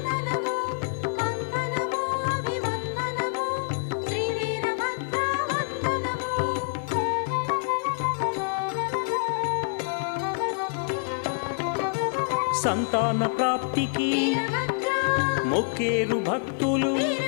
సంతాన ప్రాప్తికి మొక్కేరు భక్తులు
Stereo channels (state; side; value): silent; right; 58 dB below the other